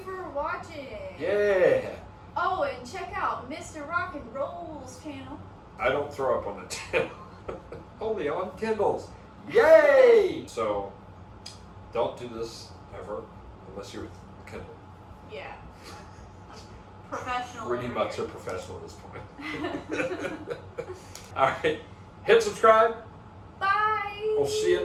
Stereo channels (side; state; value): both; identical; correlation 1.00